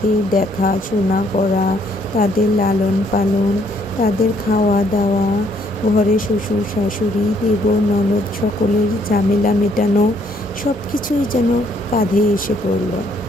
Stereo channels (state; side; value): normal; both; correlation 0.67